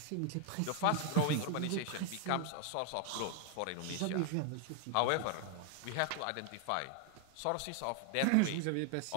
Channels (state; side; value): different; both; correlation 0.00